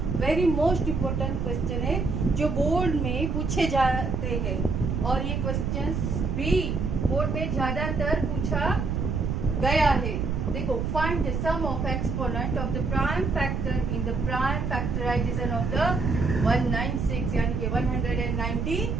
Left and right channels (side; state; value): right; noise; rumble, 1 dB below the sound